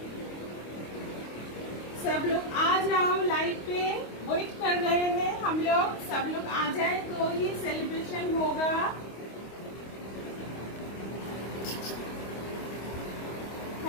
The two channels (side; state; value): right; late; 25 ms